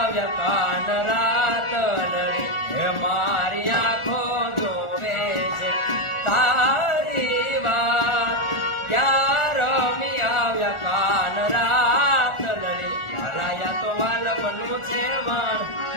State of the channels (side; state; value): right; late; 1.4 ms